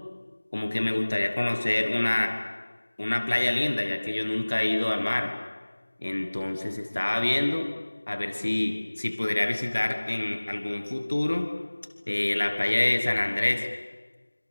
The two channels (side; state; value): both; inverted; correlation -1.00